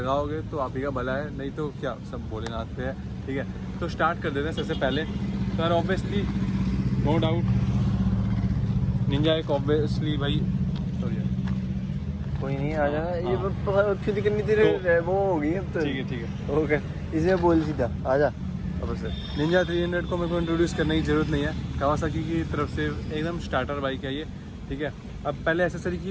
तो आप ही का भला है, नहीं तो क्या सब भोलेनाथ पे है, ठीक है। तो स्टार्ट कर देते हैं सबसे पहले। तो यार ऑब्वियसली नो डाउट निंजा एक ऑब्वियसली भाई कोई नहीं आ जाना। ये हाँ। खुद करनी तेरे वो होगी अब तो। ठीक है ओके, इसे बोल सीधा आ जा। अब से निंजा 300 को मेरे को इंट्रोड्यूस करने की ज़रूरत नहीं है, कावासाकी की तरफ से एकदम स्टार्टर बाइक है ये, ठीक है। अब पहले एसेसरी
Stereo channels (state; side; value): identical; both; correlation 1.00